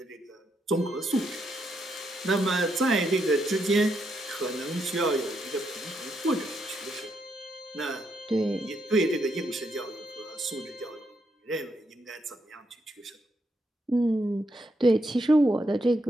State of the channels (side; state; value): both; normal; correlation 0.79